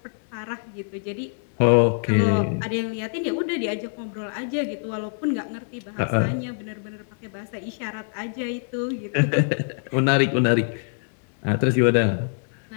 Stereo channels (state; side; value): silent; right; digital silence